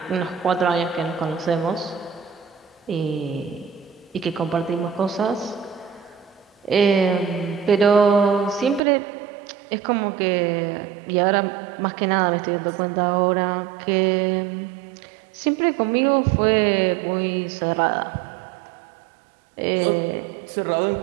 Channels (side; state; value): left; drops out; at 8.8 s